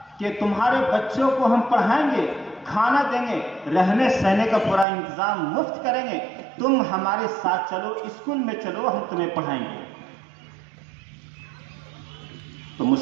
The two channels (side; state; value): left; drops out; at 4.9 s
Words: کہ تمہارے بچوں کو ہم پڑھائیں گے، کھانا دیں گے، رہنے سہنے کا پورا انتظام مفت کریں گے، تم ہمارے ساتھ چلو، اسکول میں چلو، ہم تمہیں پڑھائیں گے۔ تو